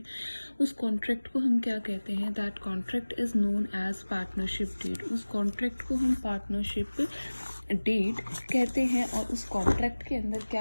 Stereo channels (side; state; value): both; inverted; correlation -1.00